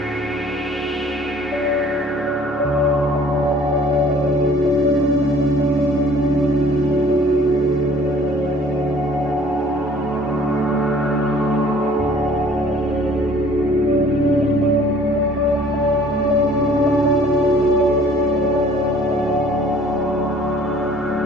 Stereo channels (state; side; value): normal; both; correlation 0.54